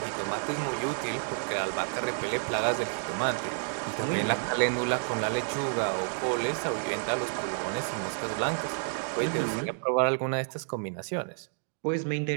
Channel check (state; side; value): silent; left; digital silence